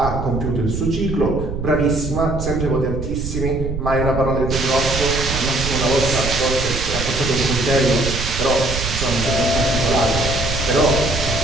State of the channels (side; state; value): right; noise; rumble, 5 dB below the sound